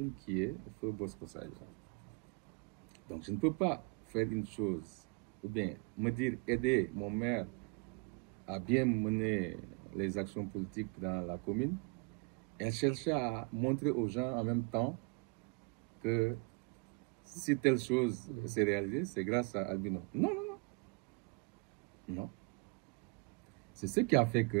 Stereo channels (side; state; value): left; quieter; 31.3 dB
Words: qui est Feu Bosco Sadio. Donc je ne peux pas faire une chose, ou bien me dire aider mon maire à bien mener les actions politiques dans la commune et chercher à montrer aux gens en même temps que si telle chose s'est réalisée, c'est grâce à Albino. Non, non, non. Non. C'est ce qui a fait